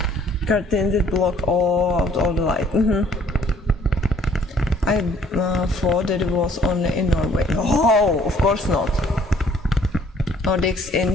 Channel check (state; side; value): normal; both; correlation 0.60